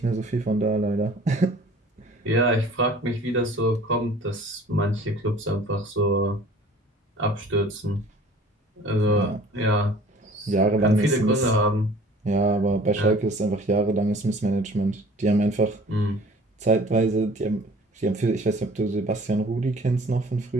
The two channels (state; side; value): normal; both; correlation 0.49